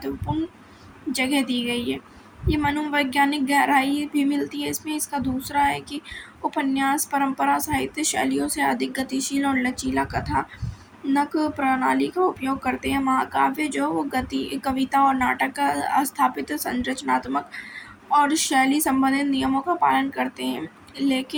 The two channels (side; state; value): both; identical; correlation 1.00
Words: जगह दी गई है। ये मनोवैज्ञानिक गहराई भी मिलती है इसमें। इसका दूसरा है कि उपन्यास परंपरा साहित्य शैलियों से अधिक गतिशील और लचीला कथानक प्रणाली का उपयोग करते हैं। महाकाव्य जो कविता और नाटक का स्थापित संरचनात्मक और शैली संबंधित नियमों का पालन करते हैं,